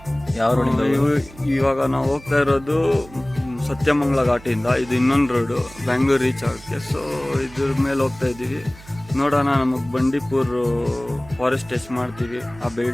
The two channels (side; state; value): right; noise; hum, 20 dB below the sound